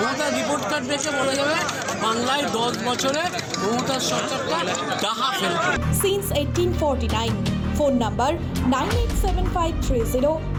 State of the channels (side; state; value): both; identical; correlation 1.00